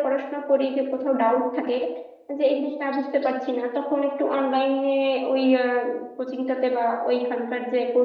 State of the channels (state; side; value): identical; both; correlation 1.00